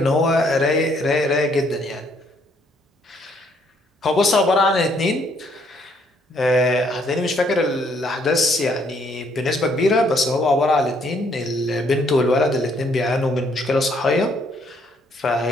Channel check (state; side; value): normal; both; correlation 0.68